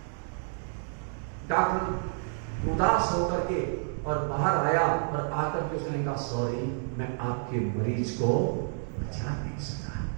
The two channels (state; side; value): silent; left; digital silence